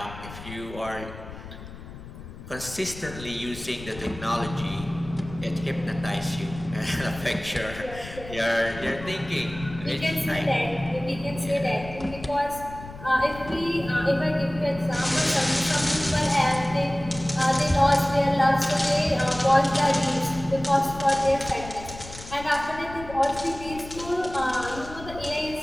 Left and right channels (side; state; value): left; noise; rumble, 14 dB below the sound